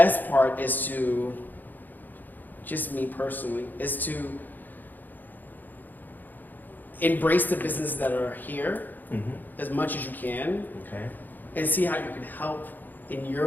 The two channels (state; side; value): late; right; 0.086 ms